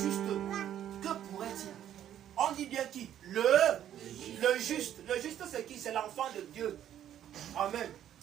que pourrait-il? On dit bien qui? Le juste. Le juste, c'est qui? C'est l'enfant de Dieu. Amen.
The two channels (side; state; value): left; quieter; 10.8 dB